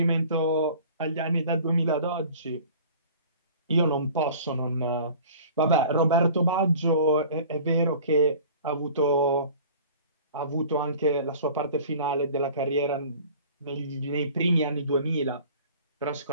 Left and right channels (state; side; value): inverted; both; correlation -0.45